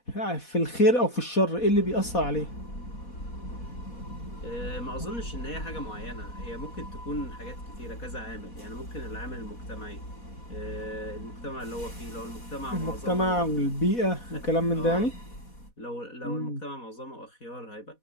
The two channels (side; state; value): right; late; 4.1 ms